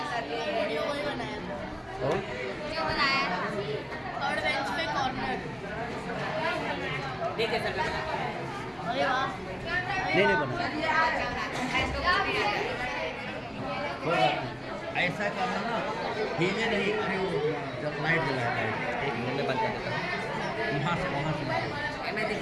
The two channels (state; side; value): identical; both; correlation 1.00